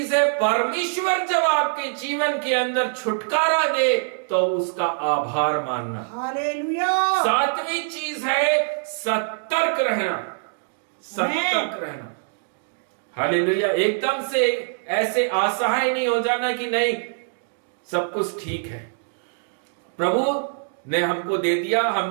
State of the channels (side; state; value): left; silent; digital silence